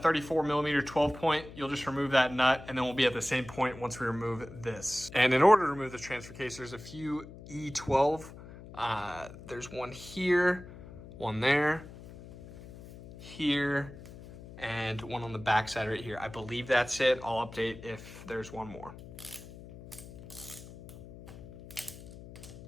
34mm 12-point. You'll just remove that nut, and then we'll be at the same point once we remove this. And in order to remove the transfer case, there's a few E12. There's one here, one there, here, and one on the back side right here. I believe that's it. I'll update if there's one more.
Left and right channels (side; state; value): left; noise; hum, 16 dB below the sound